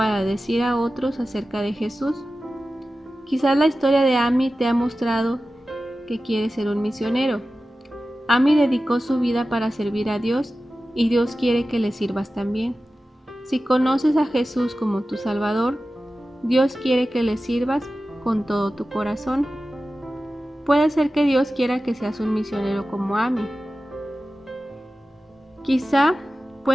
decir a otros acerca de Jesús. Quizás la historia de Amy te ha mostrado que quiere ser un misionero. Amy dedicó su vida para servir a Dios y Dios quiere que le sirvas también. Si conoces a Jesús como tu Salvador, Dios quiere que le sirvas con todo tu corazón. Puede ser que Dios quiera que seas un misionero como Amy. Quizá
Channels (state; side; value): normal; both; correlation 0.95